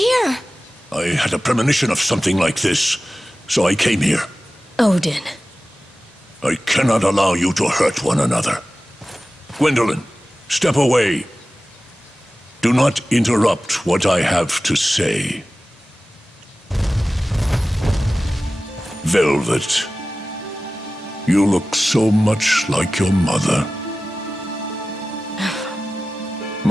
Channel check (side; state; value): both; normal; correlation 0.96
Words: I had a premonition of something like this, so I came here. Odin. I cannot allow you to hurt one another. Gwendolyn, step away. Do not interrupt what I have to say. Velvet, you look so much like your mother.